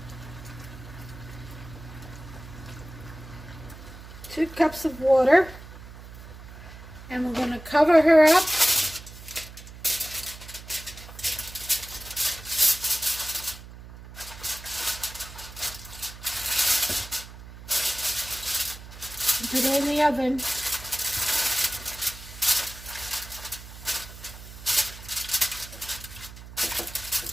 2 cups of water. And we're going to cover her up. And put it in the oven.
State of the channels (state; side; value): noise; right; hum, 15 dB below the sound